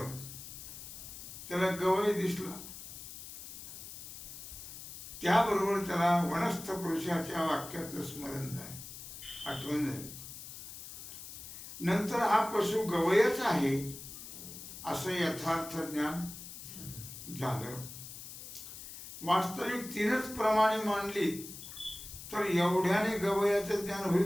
त्याला गवय दिसला, त्याबरोबर त्याला वनस्थ पुरुषाच्या वाक्याचं स्मरण झालं, आठवण झाली। नंतर हा पशु गवयच आहे असं यथार्थ ज्ञान झालं। वास्तविक 3च प्रमाणे मानली तर एवढ्याने गवयाचं ज्ञान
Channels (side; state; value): left; noise; hiss, 12 dB below the sound